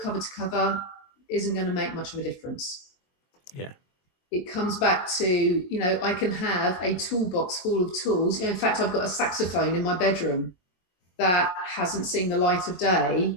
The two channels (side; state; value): right; late; 22 ms